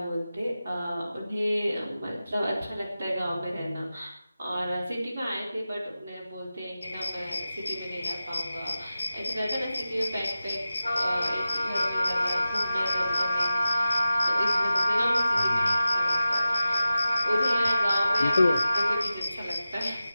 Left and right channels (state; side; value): inverted; both; correlation -0.93